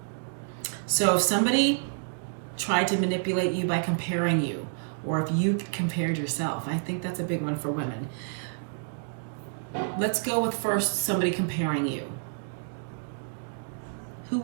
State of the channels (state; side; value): silent; left; digital silence